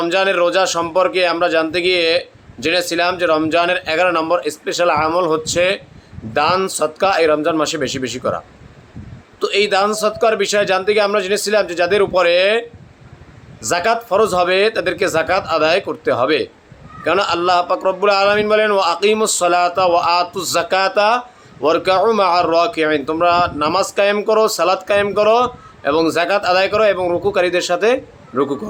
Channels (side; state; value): both; identical; correlation 1.00